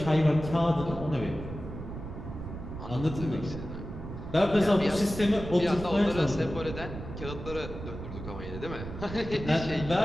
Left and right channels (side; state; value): right; noise; rumble, 9 dB below the sound